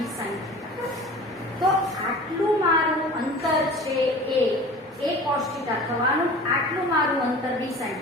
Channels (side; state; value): both; normal; correlation 0.40